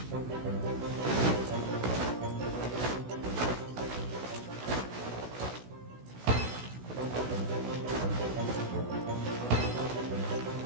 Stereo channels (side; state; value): left; late; 16 ms